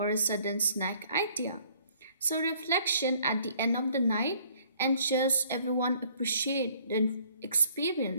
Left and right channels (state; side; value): inverted; both; correlation -0.60